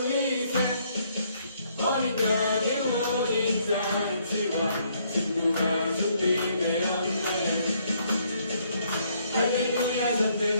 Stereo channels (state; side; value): inverted; both; correlation -0.69